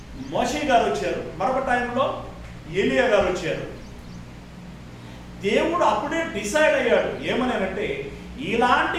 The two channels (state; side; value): identical; both; correlation 1.00